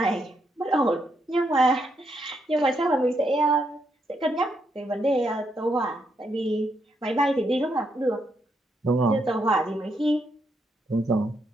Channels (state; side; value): normal; both; correlation 0.78